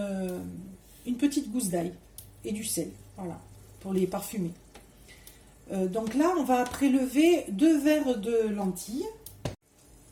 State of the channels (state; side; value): identical; both; correlation 1.00